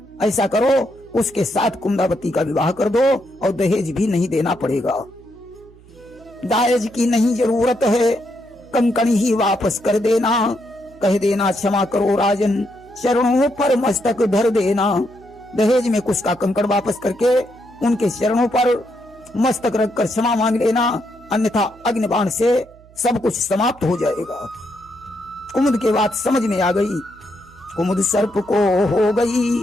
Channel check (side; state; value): right; noise; hum, 25 dB below the sound